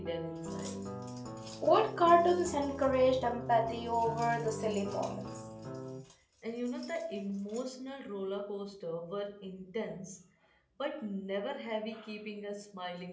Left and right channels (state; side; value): identical; both; correlation 1.00